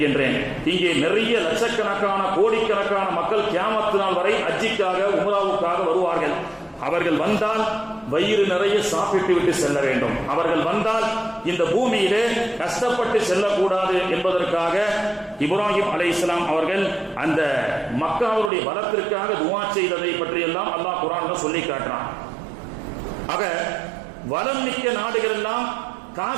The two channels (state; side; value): drops out; left; at 18.5 s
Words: இங்கே நிறைய லட்சக்கணக்கான கோடிக்கணக்கான மக்கள் கியாமத் நாள் வரை ஹஜ்ஜிக்காக உம்ராவுக்காக வருவார்கள். அவர்கள் வந்தால் வயிறு நிறைய சாப்பிட்டு விட்டு செல்ல வேண்டும். அவர்கள் வந்தால் இந்த பூமியிலே கஷ்டப்பட்டு செல்லக்கூடாது என்பதற்காக இப்ராஹிம் அலைஹிஸ்ஸலாம் அவர்கள் அந்த மக்காவுடைய வளத்திற்காக துஆ செய்ததை பற்றியெல்லாம் அல்லாஹ் குர்ஆன்ல சொல்லி காட்டுறான். ஆக வளம் மிக்க நாடுகள் எல்லாம்,